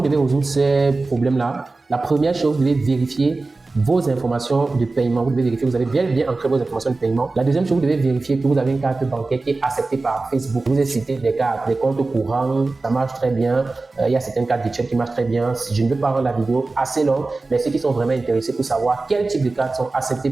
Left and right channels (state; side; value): quieter; left; 3.5 dB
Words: devez résoudre ces problèmes-là? La première chose, vous devez vérifier vos informations de paiement. Vous devez vérifier que vous avez bien ancré vos informations de paiement. La deuxième chose, vous devez vérifier que vous avez une carte bancaire qui est acceptée par Facebook. Je vous ai cité des cartes, des comptes courants, ça marche très bien. Il y a certaines cartes virtuelles qui marchent très bien. Je ne veux pas rendre la vidéo assez longue, mais ceux qui sont vraiment intéressés pour savoir quel type de cartes sont acceptées